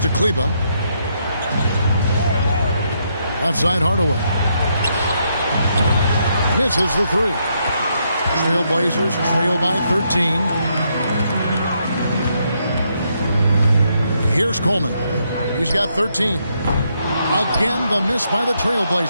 to Kleba. Left side Hardaway. Misses the three. Trailblazers trail by 13. Here's Coleman. He's got 13. Again, the miss by the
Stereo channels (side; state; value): both; inverted; correlation -0.77